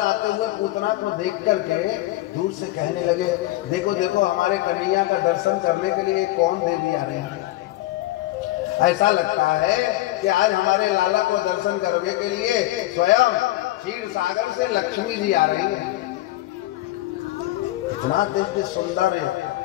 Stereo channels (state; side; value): quieter; right; 17.0 dB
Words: हुए पूतना को देख करके दूर से कहने लगे देखो देखो हमारे कन्हैया का दर्शन करने के लिए कौन देवी आ रही है। ऐसा लगता है कि आज हमारे लाला को दर्शन करने के लिए स्वयं क्षीर सागर से लक्ष्मी जी आ रही है। इतना दिव्य सुंदर है।